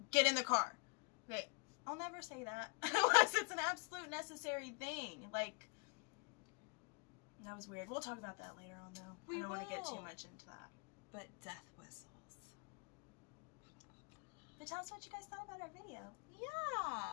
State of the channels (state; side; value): quieter; right; 32.1 dB